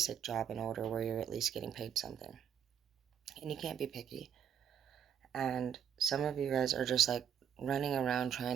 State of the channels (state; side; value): quieter; left; 8.7 dB